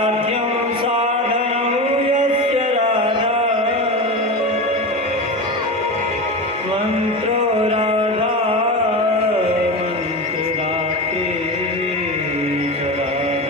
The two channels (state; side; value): normal; both; correlation 0.23